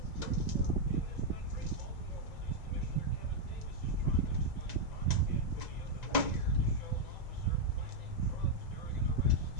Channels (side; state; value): right; late; 1.9 ms